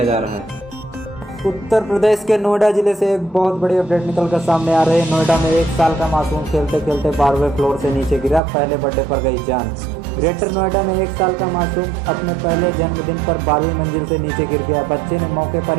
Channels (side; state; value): left; drops out; at 8.4 s